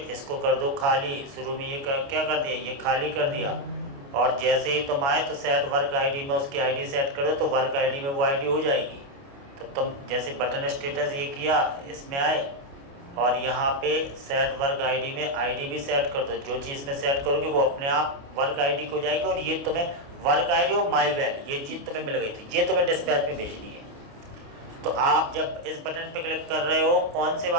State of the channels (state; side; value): late; left; 29 ms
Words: इसको कर दो खाली। शुरू में ये क्या कर दिया, ये खाली कर दिया, और जैसे ही तुम आए तो सेट वर्क आईडी में उसकी आईडी सेट करो, तो वर्क आईडी में वो आईडी हो जाएगी। तो तुम जैसे बटन स्टेटस ये किया, इसमें आए और यहाँ पे सेट वर्क आईडी में आईडी भी सेट कर दो। जो चीज़ में सेट करोगे वो अपने आप वर्क आईडी को जाएगी, और ये तुम्हें वर्क आईडी और माई वैल ये चीज़ तुम्हें मिल गई थी, ये तुम्हें डिस्पैच में भेजनी है। तो आप जब इस बटन पे क्लिक कर रहे हो, कौन से